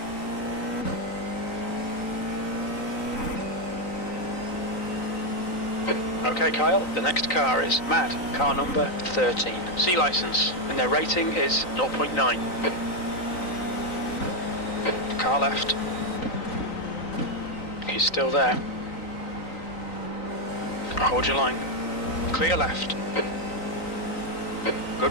Okay, Kyle, the next car is Mad, car number 13. C license, and their rating is 0.9. Car left. He's still there. Hold your line. Clear left.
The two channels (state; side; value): late; right; 3.9 ms